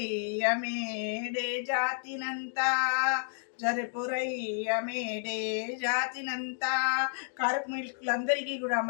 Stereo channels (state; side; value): silent; right; digital silence